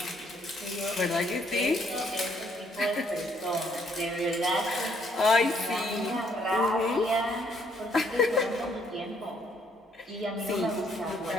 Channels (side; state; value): both; normal; correlation 0.68